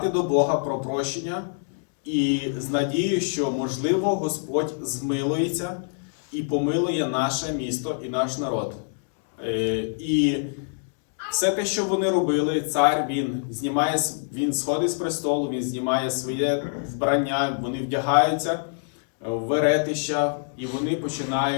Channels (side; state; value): right; silent; digital silence